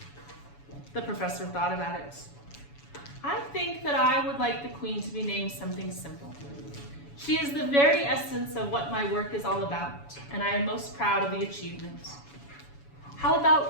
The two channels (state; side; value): late; right; 7.1 ms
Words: The professor thought about it. "I think that I would like the Queen to be named something simple. She is the very essence of what my work is all about, and I am most proud of the achievement. How